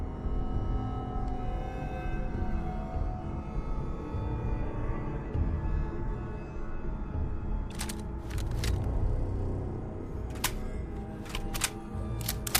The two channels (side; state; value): both; identical; correlation 1.00